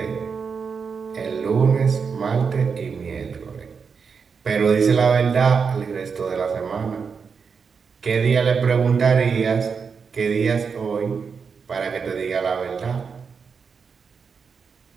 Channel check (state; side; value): quieter; left; 5.8 dB